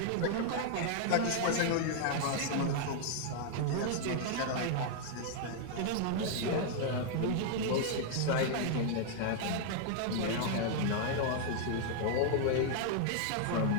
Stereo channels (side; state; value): both; different; correlation 0.00